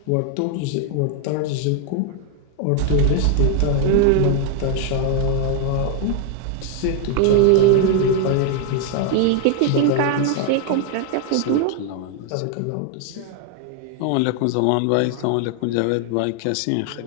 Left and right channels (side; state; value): both; different; correlation 0.01